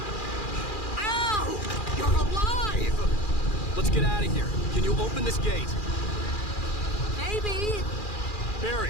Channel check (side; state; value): right; late; 2.4 ms